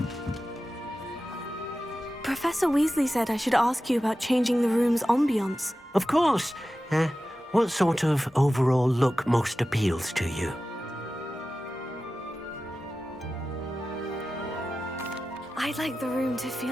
Professor Weasley said I should ask you about changing the room's ambiance. Of course. What sort of overall look most appeals to you? I'd like the room to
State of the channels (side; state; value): both; normal; correlation 0.94